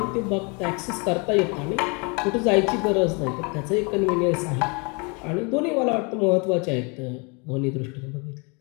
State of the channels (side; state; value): right; quieter; 32.0 dB